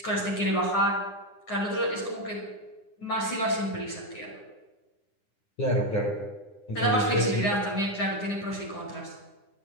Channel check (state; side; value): late; right; 9.9 ms